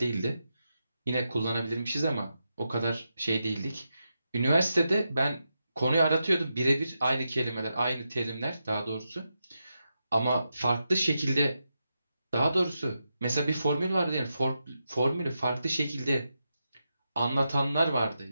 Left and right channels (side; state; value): both; inverted; correlation -0.87